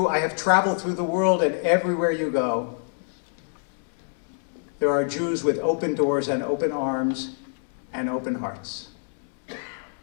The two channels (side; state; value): right; silent; 61 dB below the other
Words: I have traveled through the world, and everywhere you go, there are Jews with open doors and open arms and open hearts.